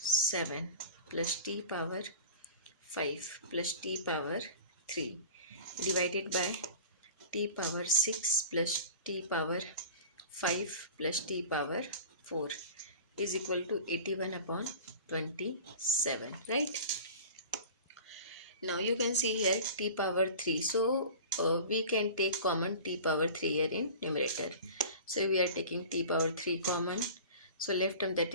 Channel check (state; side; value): inverted; both; correlation -0.39